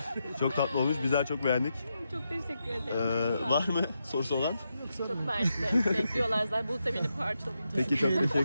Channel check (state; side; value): inverted; both; correlation -0.85